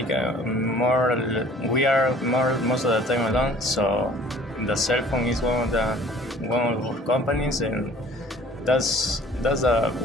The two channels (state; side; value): normal; both; correlation 0.51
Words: are most of the time alone. So the cell phone is one of our companies, and that's the